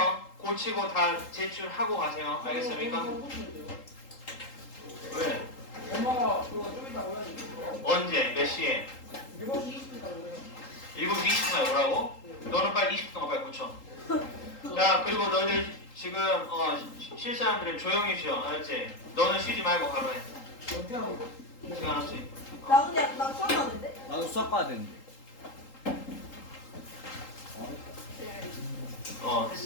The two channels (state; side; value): late; right; 3.8 ms